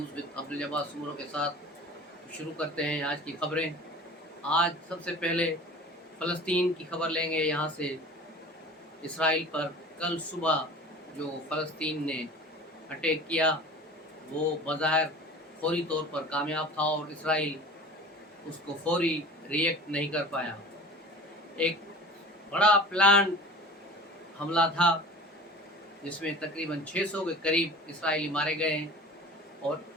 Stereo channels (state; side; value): normal; both; correlation 0.40